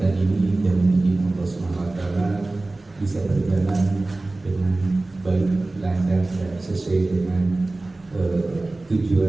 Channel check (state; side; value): quieter; left; 3.0 dB